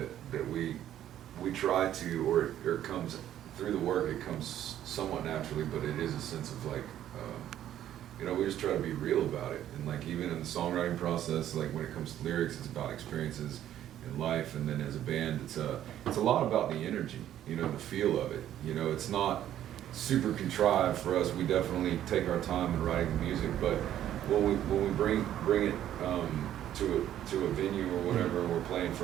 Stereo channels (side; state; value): left; quieter; 11.6 dB